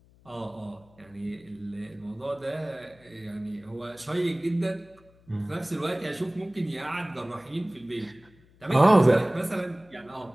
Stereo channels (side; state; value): left; noise; hum, 28 dB below the sound